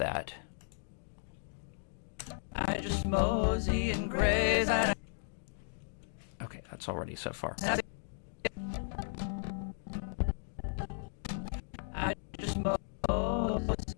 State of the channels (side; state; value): right; silent; digital silence